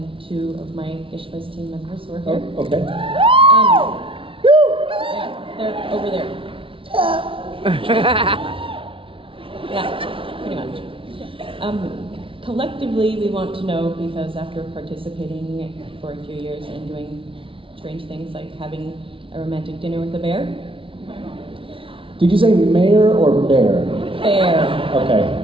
2 of my Gishwas team members who are here. Oh, okay. Yeah, they're over there. Yeah, pretty much. Collectively, we want to know, because after participating for a few years and doing strange things like having a romantic dinner with a bear. Did you say mayor or bear? Bear. Okay,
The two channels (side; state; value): left; late; 0.25 ms